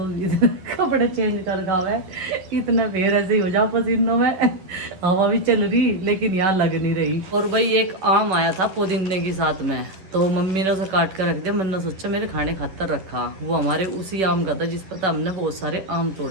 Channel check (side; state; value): left; late; 11 ms